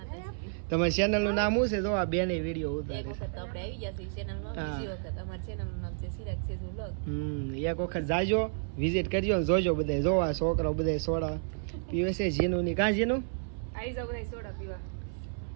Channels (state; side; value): silent; left; 57 dB below the other